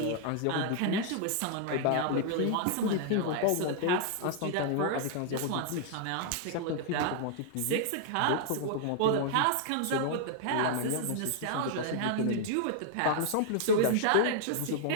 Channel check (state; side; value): different; both; correlation -0.01